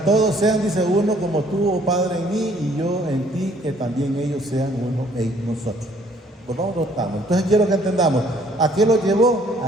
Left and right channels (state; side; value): normal; both; correlation 0.61